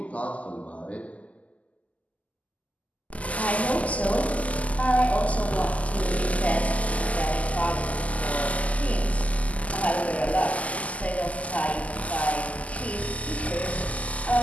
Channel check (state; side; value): late; right; 0.070 ms